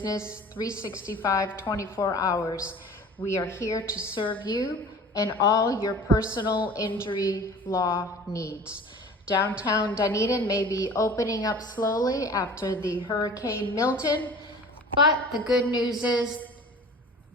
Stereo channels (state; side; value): normal; both; correlation 0.42